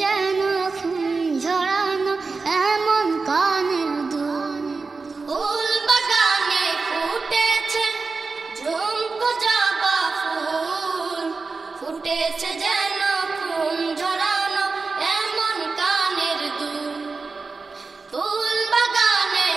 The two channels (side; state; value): left; quieter; 4.2 dB